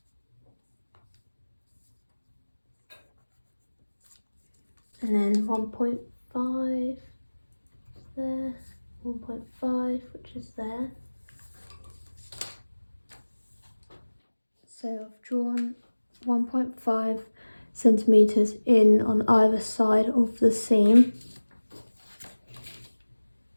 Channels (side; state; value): both; inverted; correlation -1.00